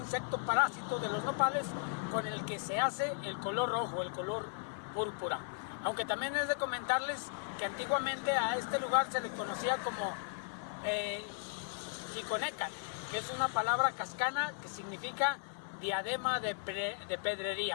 parásito de los nopales, con el que se hace el color rojo, el color púrpura. Aunque también es de comentarles que antiguamente a este lugar se le conocía como Chiconecal, que es una palabra cascana que significa diadema de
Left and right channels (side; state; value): right; silent; 53 dB below the other